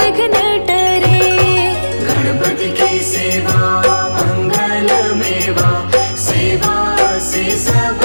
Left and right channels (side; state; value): both; inverted; correlation -1.00